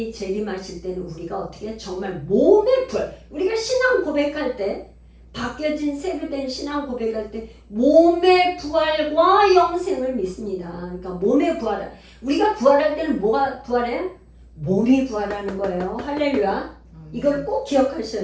재림하실 때는 우리가 어떻게 정말 몸의 부활 우리가 신앙 고백할 때 바뀌어진 새로 된 신앙 고백할 때 몸의 부활과 영생을 믿습니다. 그러니까 몸의 부활 우리가 부활할 때는 뭐가 부활해요? 몸이 부활하는 거예요. 할렐루야. 이걸 꼭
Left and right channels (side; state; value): both; identical; correlation 1.00